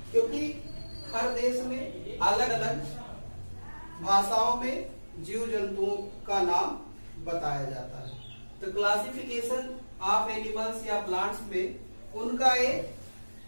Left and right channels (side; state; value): both; inverted; correlation -1.00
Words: क्योंकि हर देश में अलग अलग भाषाओं में जीव जंतुओं का नाम बताया जाता है। तो क्लासिफिकेशन ऑफ एनिमल्स या प्लांट्स में उनका एक